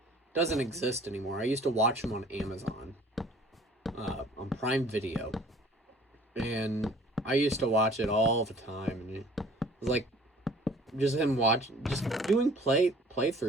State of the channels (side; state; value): both; normal; correlation 0.52